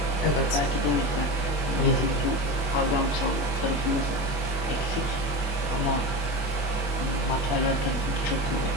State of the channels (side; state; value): right; late; 24 ms